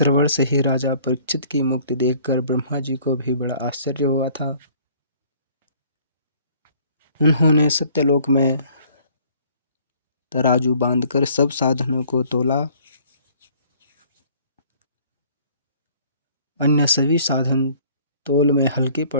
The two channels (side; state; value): both; inverted; correlation -0.57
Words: से ही राजा परीक्षित की मुक्ति देखकर ब्रह्मा जी को भी बड़ा आश्चर्य हुआ था। उन्होंने सत्यलोक में तराजू बांधकर सब साधनों को तोला। अन्य सभी साधन तोल में हल्के